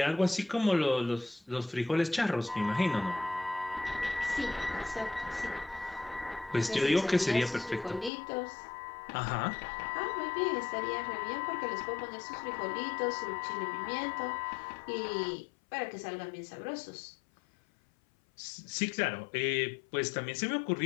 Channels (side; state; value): right; drops out; at 8.1 s